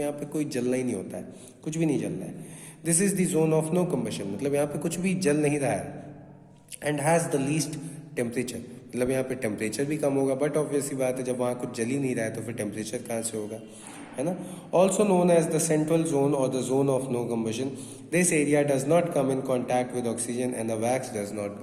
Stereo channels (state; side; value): identical; both; correlation 1.00